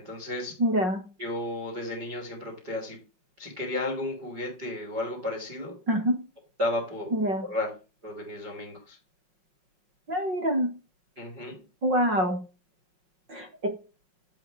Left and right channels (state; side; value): late; left; 5.5 ms